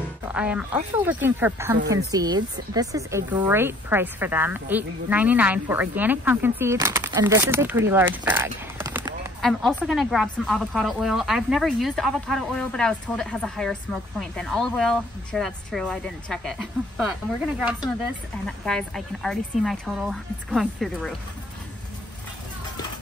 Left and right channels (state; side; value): normal; both; correlation 0.57